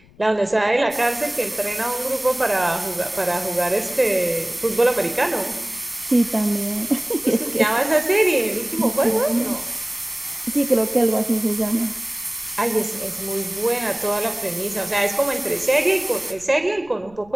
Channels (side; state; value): left; noise; rumble, 26 dB below the sound